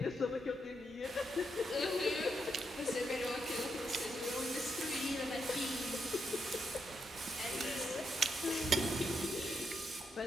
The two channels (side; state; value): both; normal; correlation 0.81